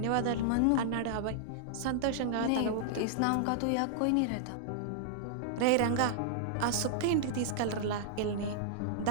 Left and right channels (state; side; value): different; both; correlation -0.01